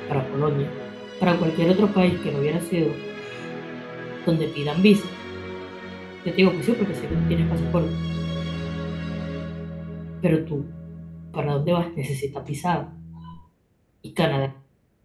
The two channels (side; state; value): both; identical; correlation 1.00